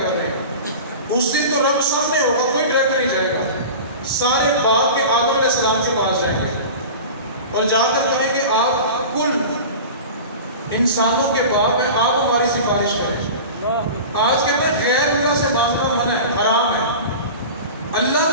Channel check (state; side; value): inverted; both; correlation -0.34